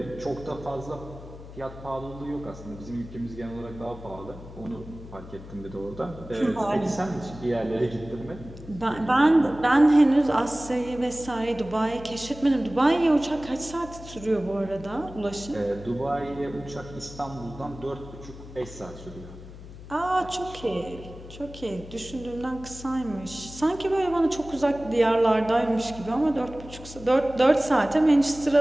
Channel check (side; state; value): left; noise; hum, 15 dB below the sound